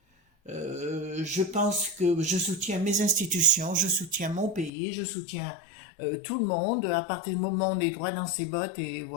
Je pense que je soutiens mes institutions, je soutiens mon pays, je soutiens tout le monde. À partir du moment où on est droit dans ses bottes et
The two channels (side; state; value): right; drops out; at 4.7 s